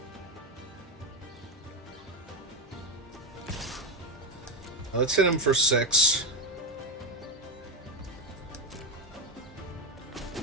Let's hit him for 6.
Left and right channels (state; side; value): normal; both; correlation 0.07